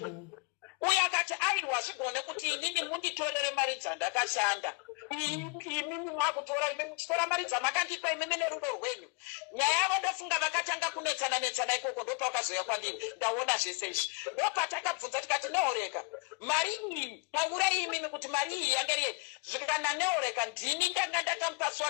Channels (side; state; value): right; quieter; 30.2 dB